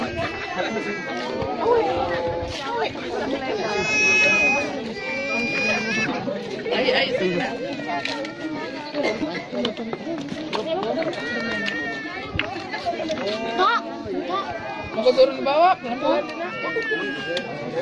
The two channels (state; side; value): identical; both; correlation 1.00